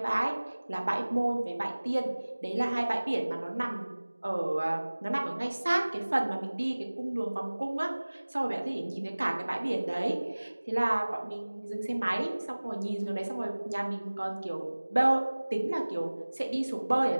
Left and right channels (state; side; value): inverted; both; correlation -1.00